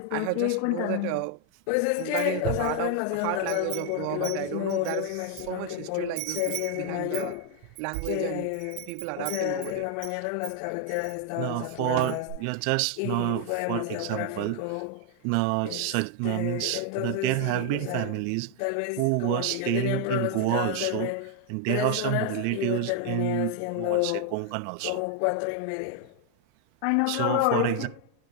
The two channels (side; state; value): both; different; correlation 0.00